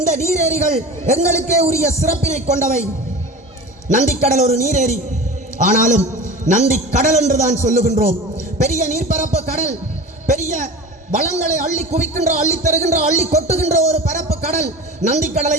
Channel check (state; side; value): normal; both; correlation 0.33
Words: நீரேரிகள் எங்களுக்கே உரிய சிறப்பினை கொண்டவை. நந்திக்கடல் ஒரு நீரேரி, ஆனாலும் நந்திக்கடல் என்றுதான் சொல்லுகின்றோம். பெரிய நீர்ப்பரப்பு கடல், பெரிய வளங்களை அள்ளி குவிக்கின்ற, அள்ளி தருகின்ற, அள்ளி கொட்டுகின்ற ஒரு பரப்பு கடல்.